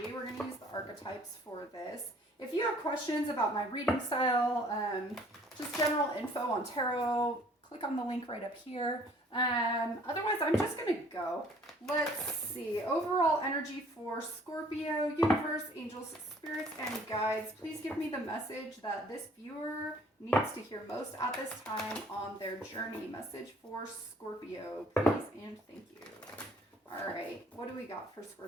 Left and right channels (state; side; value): normal; both; correlation 0.56